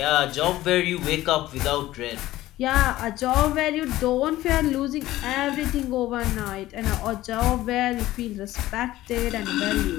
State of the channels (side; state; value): right; quieter; 15.8 dB